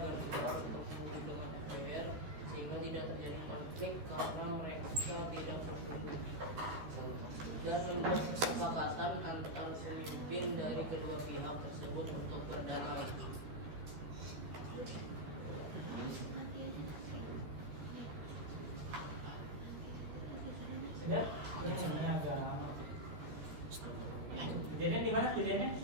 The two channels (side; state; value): left; late; 13 ms